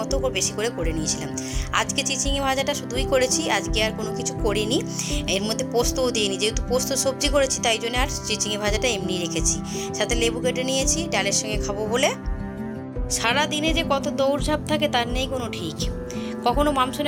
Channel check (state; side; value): identical; both; correlation 1.00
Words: বেশি করে করে নিয়েছিলাম। আজকে চিচিঙে ভাজাটা শুধুই করেছি, আজকে আর কোনো কিছু করিনি। এর মধ্যে পোস্তও দিইনি, যেহেতু পোস্ত সবজি করেছি তাই জন্য আর চিচিঙে ভাজাটা এমনি রেখেছি। সাথে লেবু কেটে নিয়েছি ডালের সঙ্গে খাবো বলে। সারা দিনে যে কত দৌড়ঝাঁপ থাকে তার নেই কোনো ঠিক। কখনো